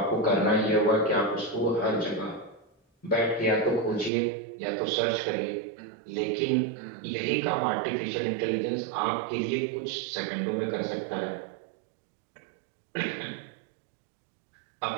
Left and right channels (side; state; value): left; drops out; at 4.1 s